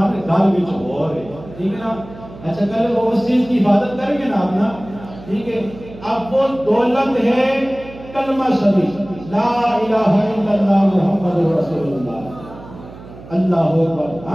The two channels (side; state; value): right; noise; hum, 17 dB below the sound